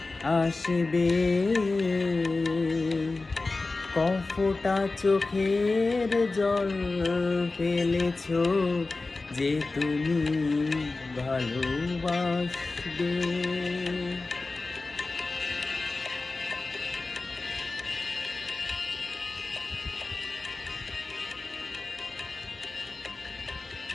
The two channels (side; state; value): right; quieter; 3.5 dB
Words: আসবে। কফোটা চোখের জল ফেলেছো যে তুমি ভালোবাসবে।